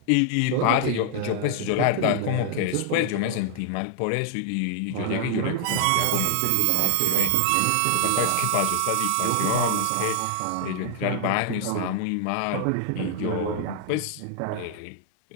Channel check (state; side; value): different; both; correlation 0.00